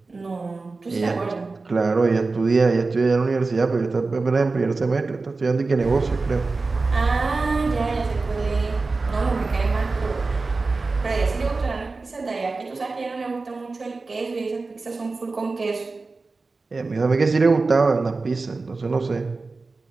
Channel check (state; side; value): quieter; left; 3.8 dB